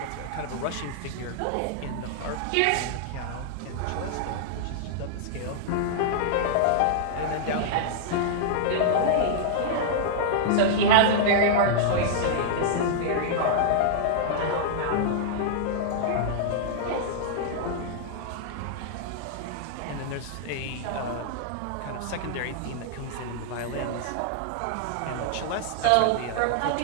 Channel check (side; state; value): both; different; correlation -0.01